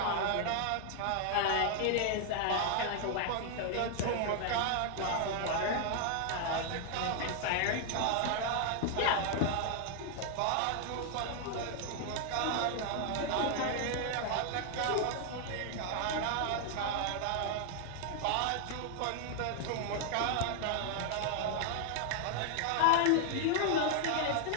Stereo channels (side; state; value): both; different; correlation 0.00